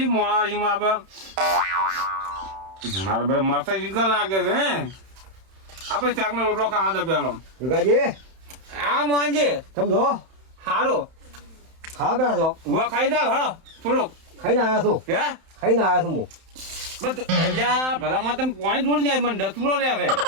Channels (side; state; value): left; late; 31 ms